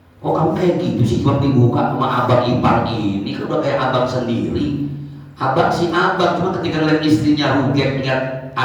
Oh kamu kayak gitu sih, cuma dibuka sama abang ipar ini, kan udah kayak abang sendiri. Abang si abang, cuma ketika ngeliat istrinya ruget, lihat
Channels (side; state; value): both; identical; correlation 1.00